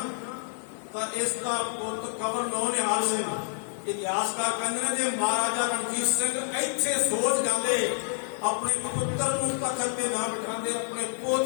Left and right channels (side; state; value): right; silent; digital silence